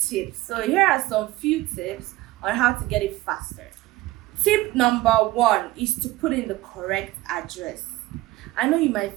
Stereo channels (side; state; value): left; quieter; 17.9 dB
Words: So here are some few tips on how to get it faster. Tip number 1 is to put in the correct address. I know you might